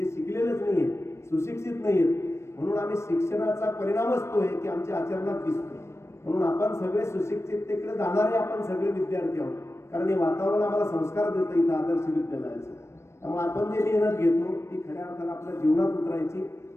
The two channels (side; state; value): right; late; 0.13 ms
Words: शिकलेलेच नाही आहेत, सुशिक्षित नाही आहेत. म्हणून आम्ही शिक्षणाचा परिणामच तो आहे की आमच्या आचरणात दिसतो. म्हणून आपण सगळे सुशिक्षिततेकडे जाणारे आपण सगळे विद्यार्थी आहोत. कारण हे वातावरण आम्हाला संस्कार देतं इथं आदर्श विद्यालयाचं. त्यामुळे आपण जे मेहनत घेतो ती खऱ्या अर्थानं आपल्या जीवनात उतरायची.